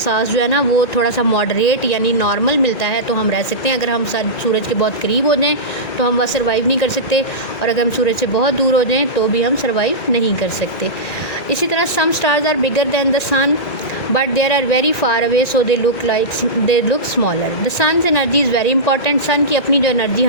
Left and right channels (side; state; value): right; late; 1.9 ms